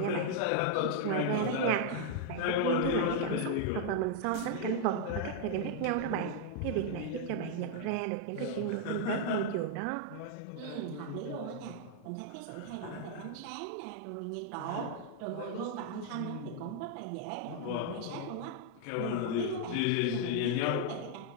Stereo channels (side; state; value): both; different; correlation 0.00